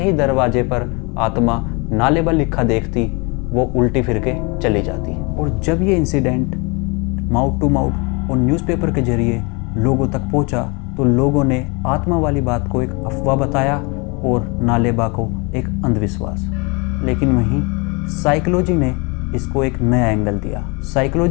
ही दरवाजे पर आत्मा नालेबा लिखा देखती वो उल्टी फिर के चली जाती। और जब ये इंसिडेंट माउथ टू माउथ और न्यूज़पेपर के जरिए लोगों तक पहुंचा तो लोगों ने आत्मा वाली बात को एक अफवाह बताया और नालेबा को एक अंधविश्वास। लेकिन वहीं साइकोलॉजी ने इसको एक नया एंगल दिया।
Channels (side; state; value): right; quieter; 29.9 dB